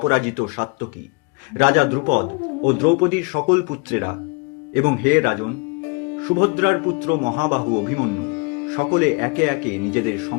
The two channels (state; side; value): quieter; right; 31.1 dB